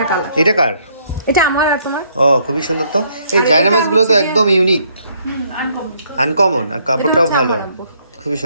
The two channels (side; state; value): both; inverted; correlation -0.68